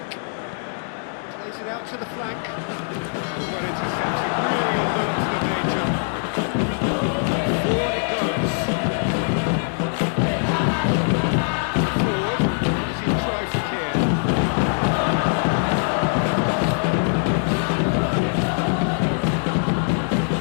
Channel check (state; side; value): silent; right; 59 dB below the other